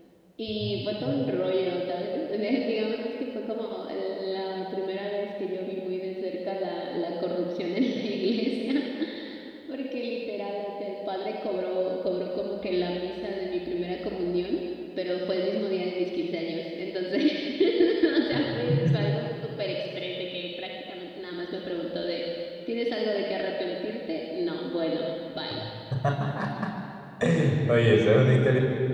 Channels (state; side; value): identical; both; correlation 1.00